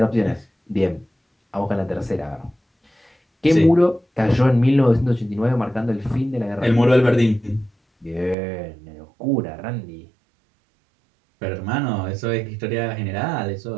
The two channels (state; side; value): drops out; left; at 8.3 s